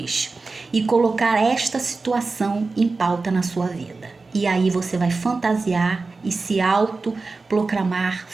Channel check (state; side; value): quieter; left; 3.9 dB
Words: E colocar esta situação em pauta na sua vida. E aí você vai fantasiar e se autoproclamar